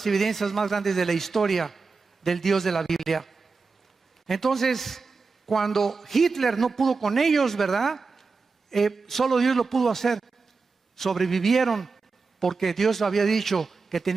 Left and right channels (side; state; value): left; quieter; 4.4 dB